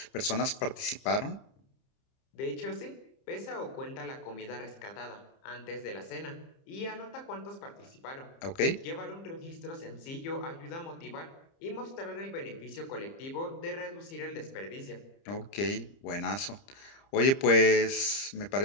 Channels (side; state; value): right; late; 30 ms